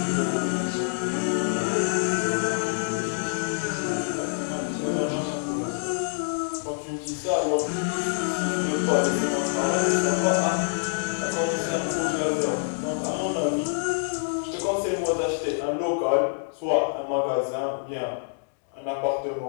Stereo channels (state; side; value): silent; right; digital silence